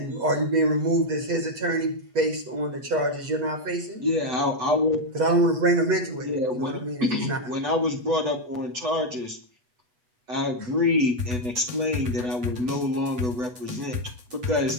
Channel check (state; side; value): late; left; 8.1 ms